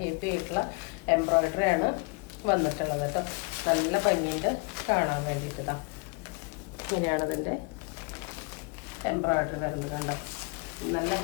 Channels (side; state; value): right; quieter; 29.0 dB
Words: ഹെവി ആയിട്ടുള്ള എംബ്രോയിഡറി ആണ് വന്നിട്ടുള്ളത് കേട്ടോ. നല്ല ഭംഗിയുണ്ട് കാണാൻ വേണ്ടിയിട്ടാ. ഇങ്ങനെയാണ് ഇതിൻ്റെ എംബ്രോയിഡറി വരുന്നത് കണ്ടോ. നല്ല